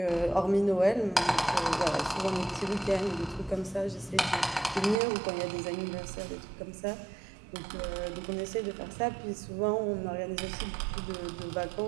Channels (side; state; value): left; drops out; at 5.0 s